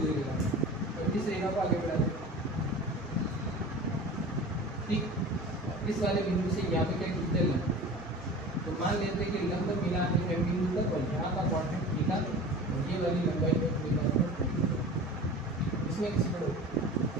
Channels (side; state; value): both; normal; correlation 0.37